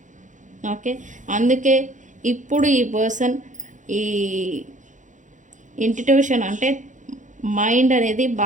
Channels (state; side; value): late; left; 0.36 ms